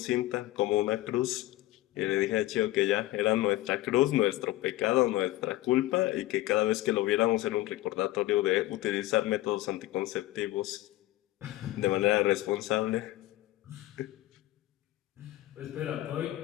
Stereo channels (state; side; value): quieter; right; 16.7 dB